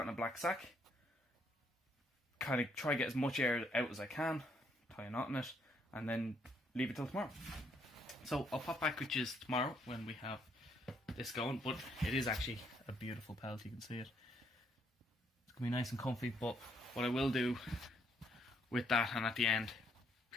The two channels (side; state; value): both; normal; correlation 0.71